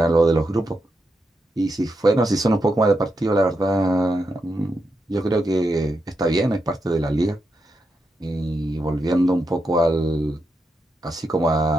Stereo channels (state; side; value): normal; both; correlation 0.85